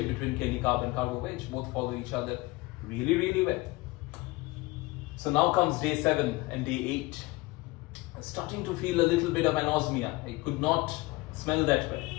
between Keli Carb and Carbo-Veg. Both follow each other really, really well. So now comes day 7 and day 8. I'm starting to feel a little bit of anosmia. I could not smell that well.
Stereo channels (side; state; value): right; quieter; 21.9 dB